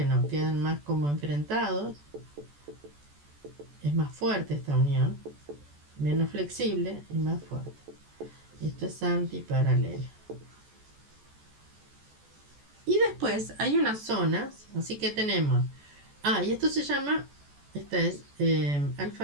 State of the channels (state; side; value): late; left; 14 ms